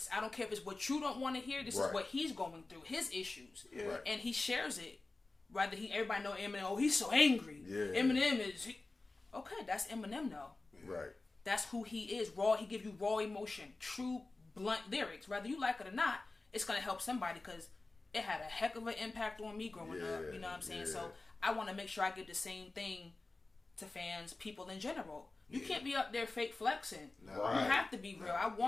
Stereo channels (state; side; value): quieter; right; 3.3 dB